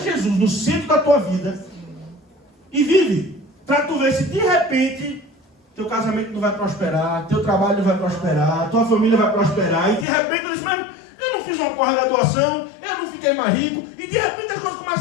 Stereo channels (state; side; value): drops out; right; at 10.1 s